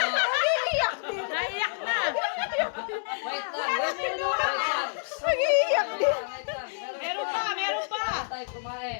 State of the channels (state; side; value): silent; right; 59 dB below the other